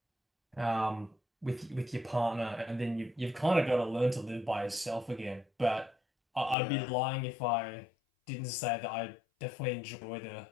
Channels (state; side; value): drops out; right; at 6.6 s